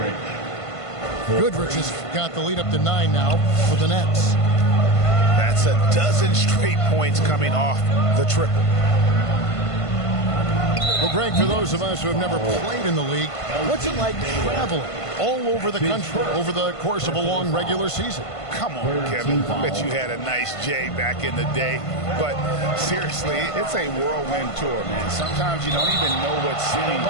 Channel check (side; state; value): right; late; 1.5 ms